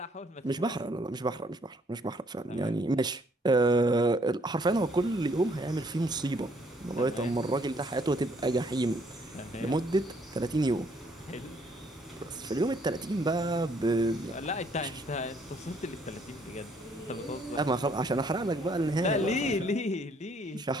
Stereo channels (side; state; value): both; normal; correlation 0.66